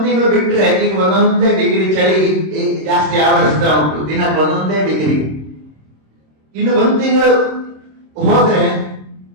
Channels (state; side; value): late; left; 26 ms